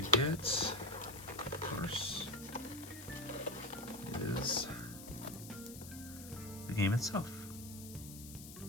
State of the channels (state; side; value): noise; left; hiss, 13 dB below the sound